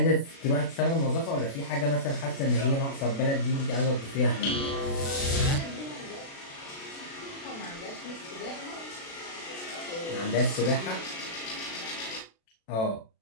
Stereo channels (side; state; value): right; late; 36 ms